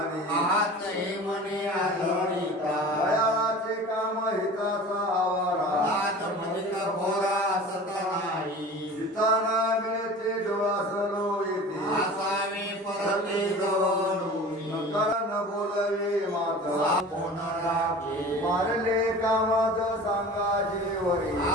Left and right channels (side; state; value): both; normal; correlation 0.39